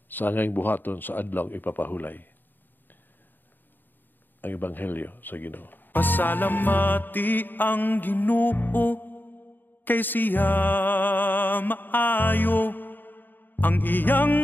sa angayng buhaton sa adlaw ipapahulay. Ang Ebanghelyo sa Ginoo. Pasalamati ang Ginoo kay siya maayo. Ang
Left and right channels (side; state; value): right; late; 0.092 ms